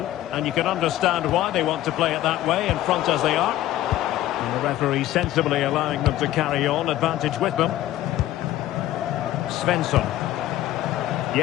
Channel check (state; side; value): quieter; right; 14.2 dB